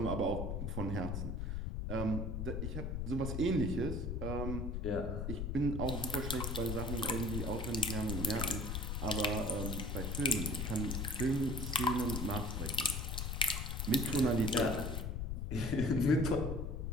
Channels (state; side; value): noise; left; rumble, 2 dB below the sound